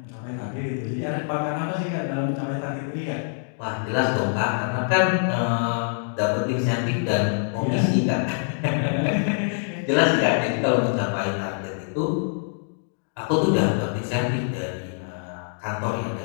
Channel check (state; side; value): silent; right; digital silence